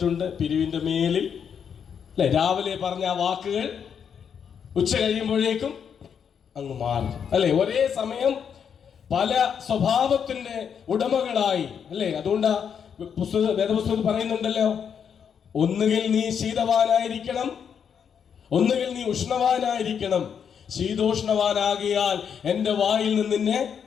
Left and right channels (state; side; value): quieter; right; 7.5 dB